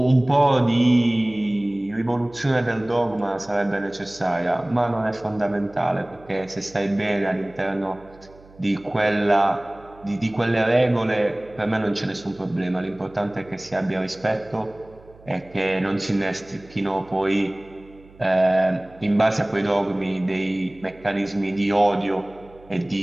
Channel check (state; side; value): noise; right; hum, 24 dB below the sound